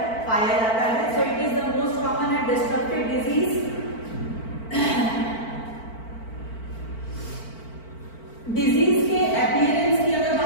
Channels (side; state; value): right; late; 4.5 ms